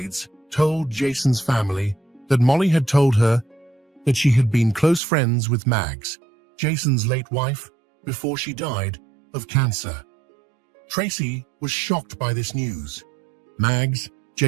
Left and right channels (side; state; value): left; drops out; at 5.0 s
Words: told Jason's family that Molly had told her that she had been close friends with Maggs, Jason's late wife, before she died of cancer. Tracy was shocked by this news. Maggs,